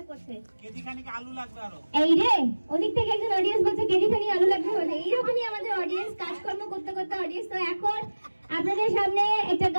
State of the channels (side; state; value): both; inverted; correlation -1.00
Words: করছে। কেজি খানিক আলু লাগবে আরো। এই রে ওদিক থেকে একজন অডিয়েন্স বলছে কেজি খানিক আলু লাগবে। বলে এইরকমই আমাদের অডিয়েন্স কাজকর্ম করতে করতে অডিয়েন্স। তো এখন আপনাদের সামনে একটা